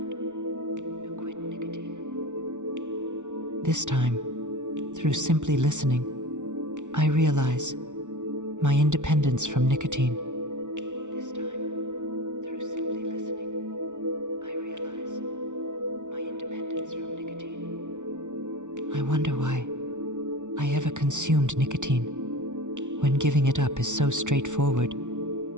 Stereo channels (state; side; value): late; left; 0.86 ms